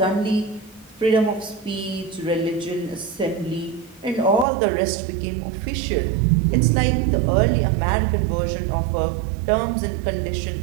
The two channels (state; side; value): drops out; left; at 4.5 s